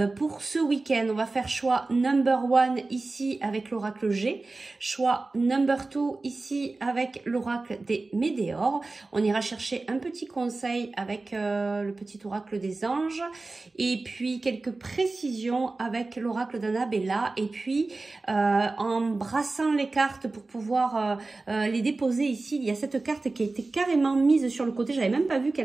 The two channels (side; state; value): left; quieter; 3.4 dB